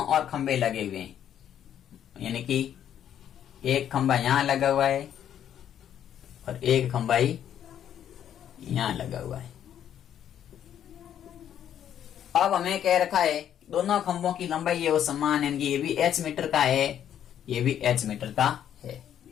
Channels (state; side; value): quieter; right; 10.0 dB